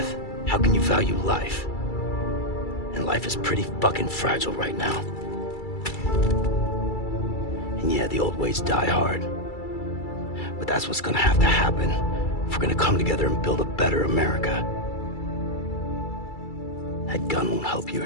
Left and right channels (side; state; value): right; late; 2.3 ms